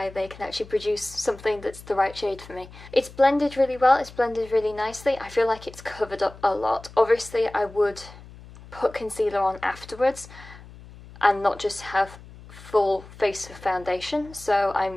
they can actually produce something that's the right shade for me. It's blended really well, it's blended really nicely. I feel like it's covered up a lot. Obviously I would put concealer on afterwards and not just have full face of foundation, so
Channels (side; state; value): left; noise; hum, 19 dB below the sound